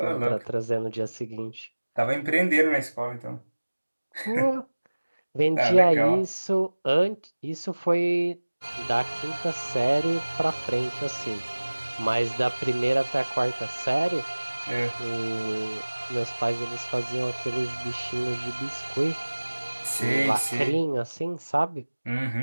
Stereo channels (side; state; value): both; inverted; correlation -1.00